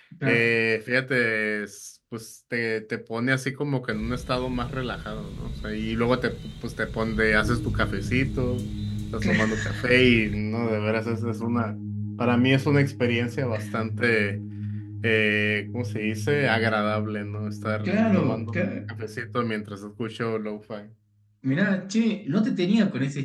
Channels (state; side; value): identical; both; correlation 1.00